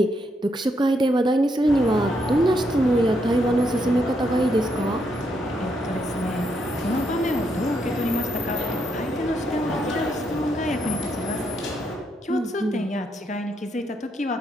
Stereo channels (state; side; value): normal; both; correlation 0.77